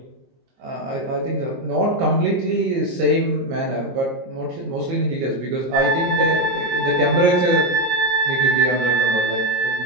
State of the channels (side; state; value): left; late; 22 ms